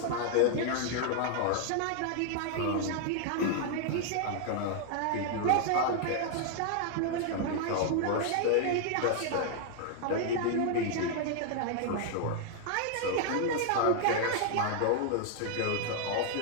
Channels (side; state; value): both; different; correlation 0.00